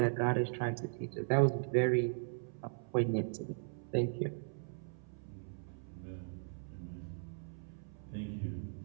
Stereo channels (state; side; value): silent; left; 52 dB below the other